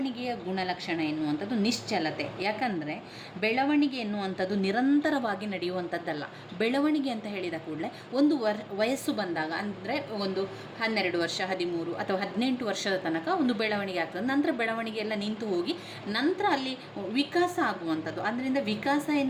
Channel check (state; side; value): identical; both; correlation 1.00